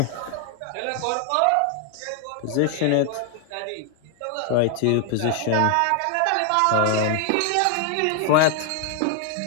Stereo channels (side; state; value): both; different; correlation 0.01